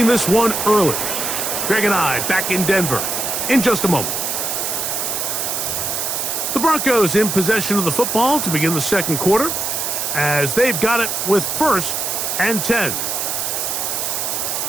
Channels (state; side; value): noise; right; hiss, 1 dB below the sound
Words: this one early. Greg and I back in Denver in just a moment. The Broncos in possession of the football to begin the 2nd quarter as they've got it with 1st and 10.